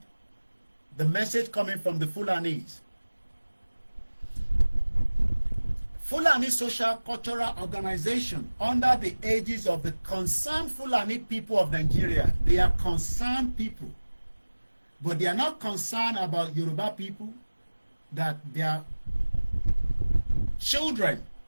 the message coming from the Fulanis. Fulani Social Cultural Organization, under the aegis of the concerned Fulani people of Nigeria. They are concerned people, but they are not concerned about Yoruba people, that their children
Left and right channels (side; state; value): both; inverted; correlation -1.00